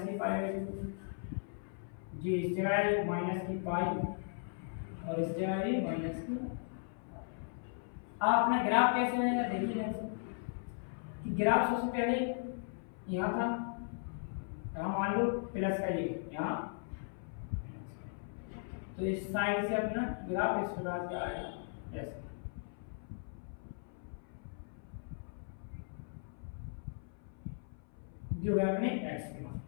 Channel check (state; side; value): silent; right; 53 dB below the other